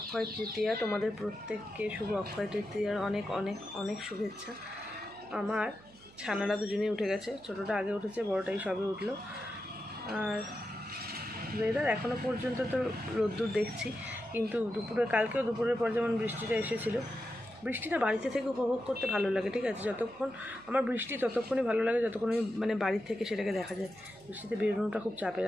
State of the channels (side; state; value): right; noise; hum, 24 dB below the sound